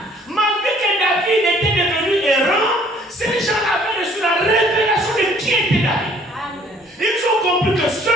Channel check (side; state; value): both; normal; correlation 0.58